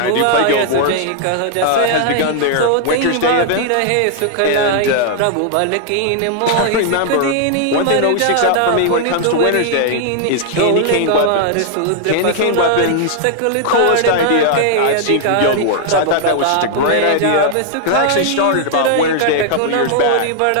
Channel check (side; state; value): both; different; correlation 0.00